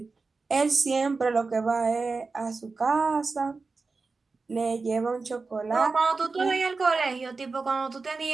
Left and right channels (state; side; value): quieter; left; 4.1 dB